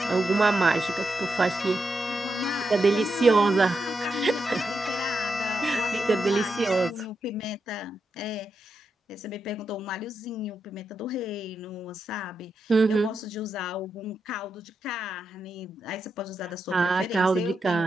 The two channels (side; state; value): both; normal; correlation 0.85